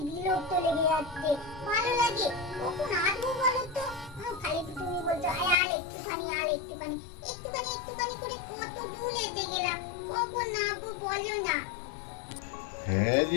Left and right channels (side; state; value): right; drops out; at 5.6 s